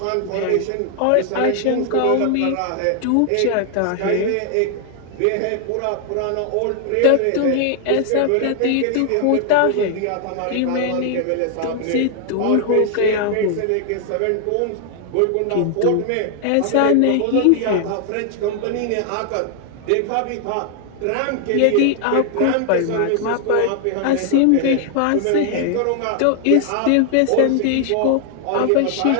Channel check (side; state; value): both; different; correlation 0.00